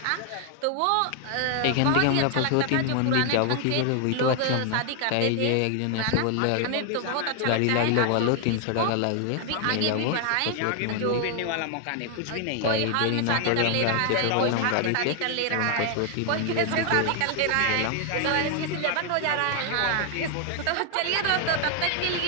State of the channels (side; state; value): both; different; correlation 0.00